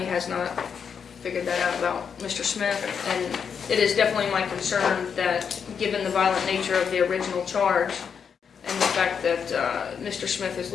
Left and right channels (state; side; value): quieter; right; 6.8 dB